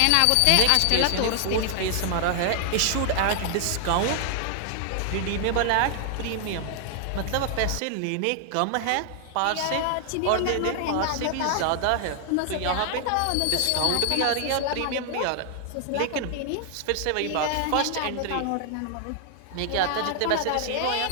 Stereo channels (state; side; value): different; both; correlation 0.00